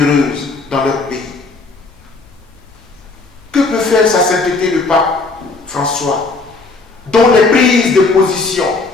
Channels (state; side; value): quieter; right; 3.8 dB